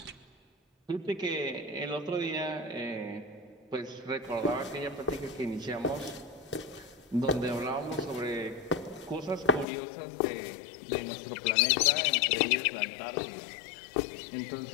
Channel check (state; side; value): drops out; right; at 9.7 s